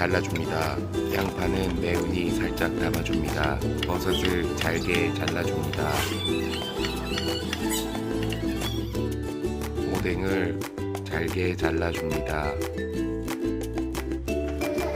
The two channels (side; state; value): both; identical; correlation 1.00